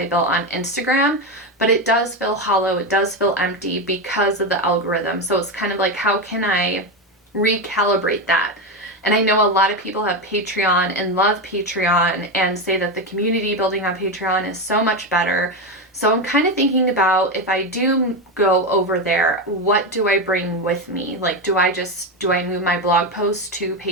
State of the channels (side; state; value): both; normal; correlation 0.13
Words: built on Instagram, but it does feel hollow. It does feel empty because of the algorithm. So it's kind of like, how can I recalibrate that? And I know a lot of people have Patreon and love Patreon and say that the community building on Patreon is so much better. So I'm kind of thinking about, if I do go over there, what do I bring with me? Like, do I move my blog posts to